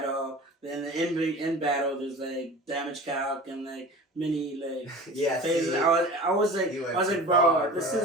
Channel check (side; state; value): both; normal; correlation 0.38